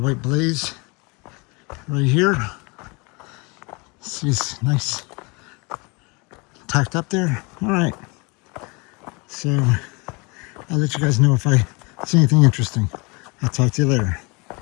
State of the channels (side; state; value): right; quieter; 28.6 dB